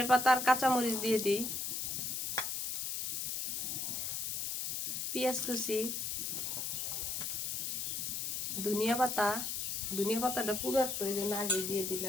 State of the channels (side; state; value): left; noise; hiss, 2 dB below the sound